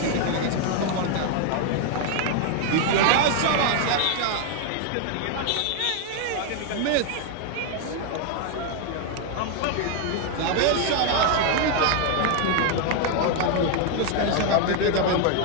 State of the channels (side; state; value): both; different; correlation 0.00